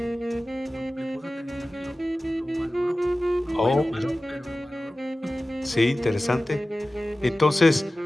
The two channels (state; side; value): normal; both; correlation 0.96